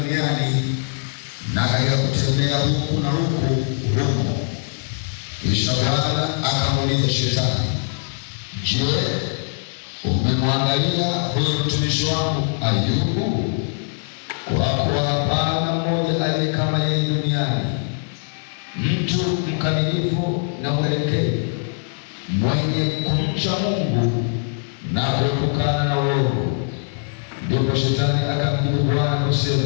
na katika kutembea huku na huku humo. Kisha Bwana akamuuliza Shetani, je, umemwangalia huyo mtumishi wangu Ayubu? Kwa kuwa hapana mmoja aliye kama yeye duniani, mtu mkamilifu mkamilifu na mwelekevu, mwenye kumcha Mungu na kuepukana na uovu. Ndipo Shetani akamjibu Bwana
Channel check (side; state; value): right; silent; digital silence